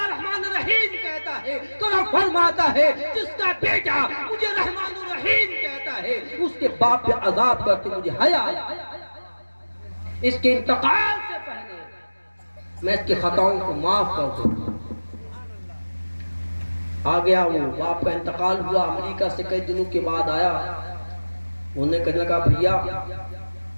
الرحیم کہتا ہے تو رب فرماتا ہے جس کا بیٹا مجھے رحمان الرحیم کہتا ہے اس کے باپ پہ عذاب کرتے مجھے حیا آیا۔ اس کے انتقال سے پہلے میں اس کی خطاؤں کو معاف کر دوں۔ آ گیا وہ، باپ کا انتقال ہوا، امریکہ سے کئی دنوں کے بعد آیا، انہوں نے کہنے لگا بھیا،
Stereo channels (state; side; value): inverted; both; correlation -1.00